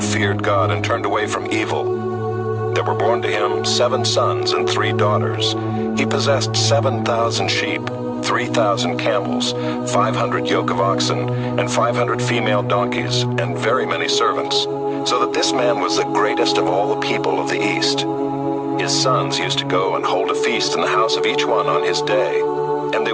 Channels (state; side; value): identical; both; correlation 1.00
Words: feared God and turned away from evil. There were born to him 7 sons and 3 daughters. He possessed 7,000 sheep, 3,000 camels, 500 yoke of oxen, and 500 female donkeys, and very many servants, so that this man was the greatest of all the people of the East. His sons used to go and hold a feast in the house of each one on his day, and they